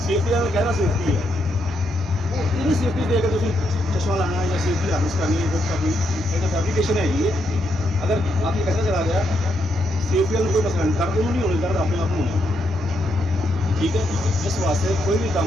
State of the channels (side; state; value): both; normal; correlation 0.79